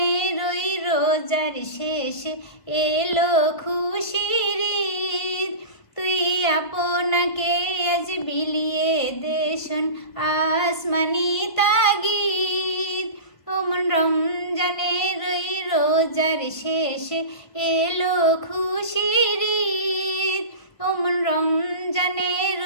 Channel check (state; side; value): late; right; 1.5 ms